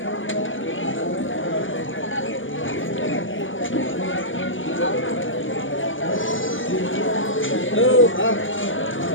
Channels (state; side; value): late; right; 0.57 ms